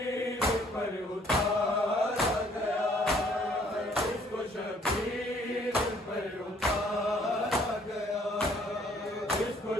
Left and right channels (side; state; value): both; normal; correlation 0.61